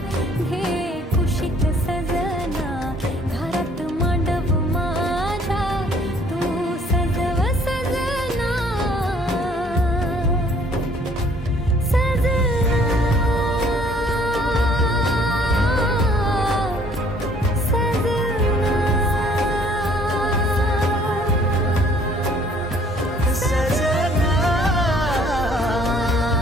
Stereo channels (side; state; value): both; normal; correlation 0.59